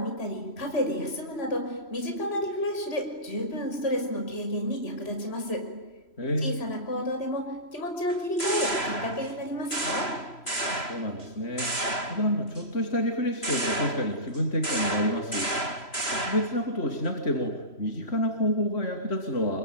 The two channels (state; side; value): late; right; 3.0 ms